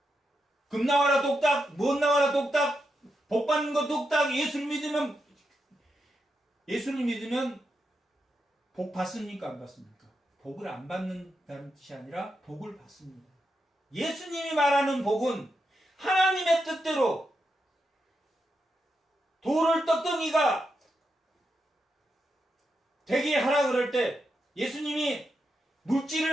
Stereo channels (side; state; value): both; normal; correlation 0.85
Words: 금 나와라 똑딱, 뭔 나와라 똑딱, 복 받는 거 똑딱, 예수를 믿으면 복 받습니까? 안 받습니까? 복을 안 받는다는 뜻이 아니라 복을 받습니다. 예수님이 말하는 복은 하나님의 뜻대로 돌을 떡덩이가 되게 하라 그럴 때 예수님이